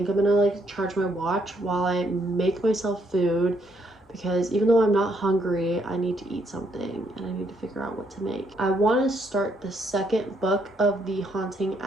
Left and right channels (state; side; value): normal; both; correlation 0.73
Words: I'm gonna like charge my watch while I make myself food, because even though I'm not hungry, I need to eat something and I need to figure out what to make. I want to start the second book of the Haunting